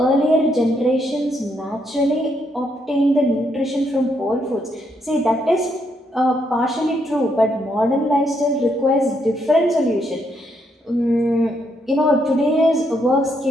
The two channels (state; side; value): normal; both; correlation 0.76